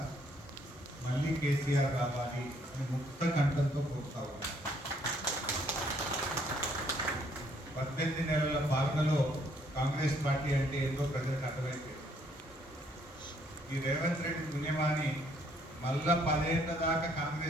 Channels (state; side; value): normal; both; correlation 0.67